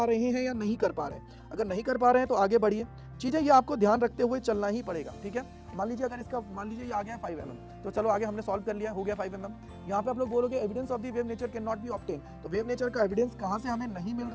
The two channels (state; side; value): identical; both; correlation 1.00